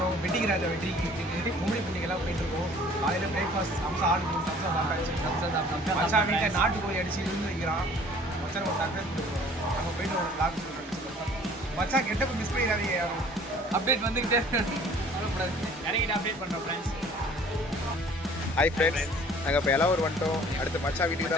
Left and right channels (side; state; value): both; normal; correlation 0.52